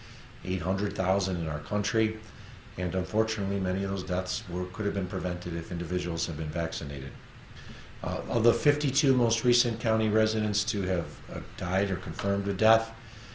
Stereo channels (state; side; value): identical; both; correlation 1.00